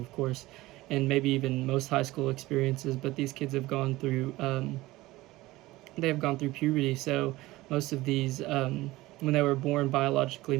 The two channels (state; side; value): quieter; left; 18.5 dB